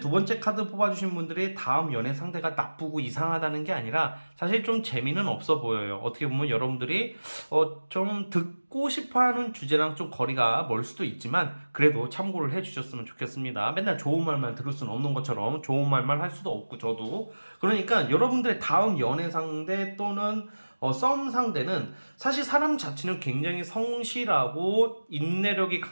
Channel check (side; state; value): both; inverted; correlation -1.00